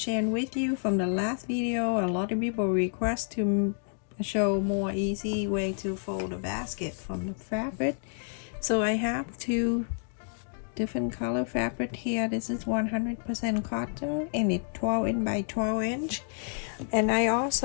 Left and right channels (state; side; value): silent; right; digital silence